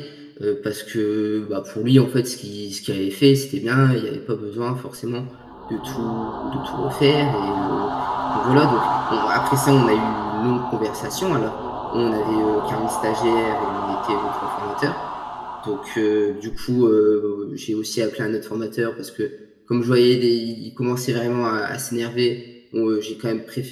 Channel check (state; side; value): identical; both; correlation 1.00